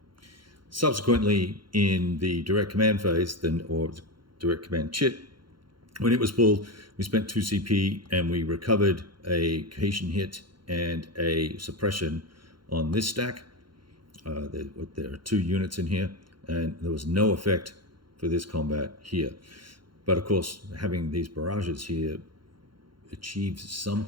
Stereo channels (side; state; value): left; late; 0.73 ms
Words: Subsequently, in the direct command phase, or direct command chit, when it was pulled, we spent 2 CP and we recovered a cohesion hit and a suppression on this stack. There are 2 units in here, and there was no effect for this combat here. But of course, having these barrages here achieves